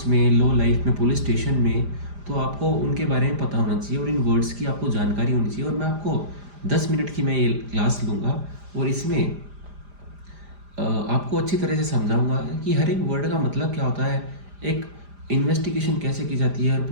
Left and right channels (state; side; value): late; left; 5.0 ms